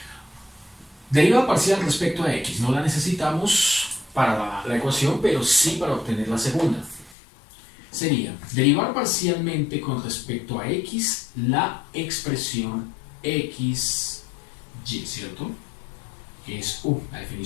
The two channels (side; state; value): right; drops out; at 7.2 s